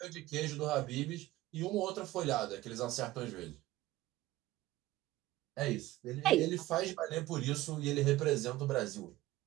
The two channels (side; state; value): left; quieter; 16.8 dB